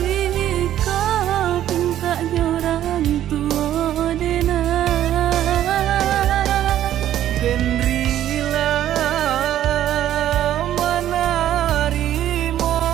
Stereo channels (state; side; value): quieter; left; 11.9 dB